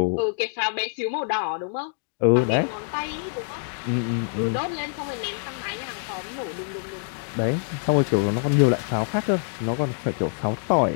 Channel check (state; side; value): silent; right; digital silence